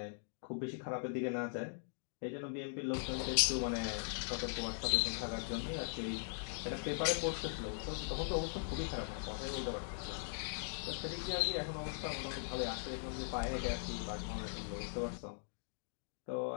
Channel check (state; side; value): silent; right; digital silence